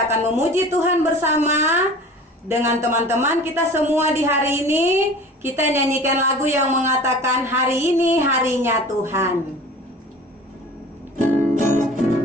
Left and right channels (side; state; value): both; normal; correlation 0.41